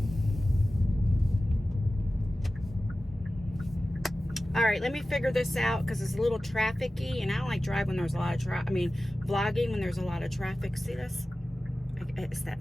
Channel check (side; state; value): both; normal; correlation 0.96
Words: All right, let me figure this out because it's a little trafficy, and I don't like driving when there's a lot of traffic. I mean, vlogging when there's a lot of traffic. See this? It's